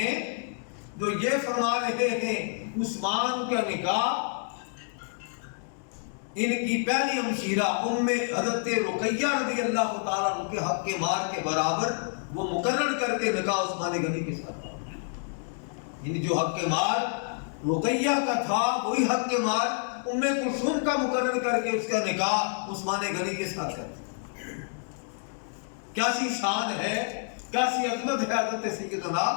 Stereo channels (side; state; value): right; silent; digital silence